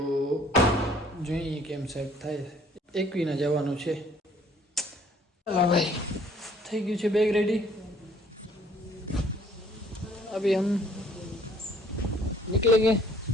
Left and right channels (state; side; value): normal; both; correlation 0.59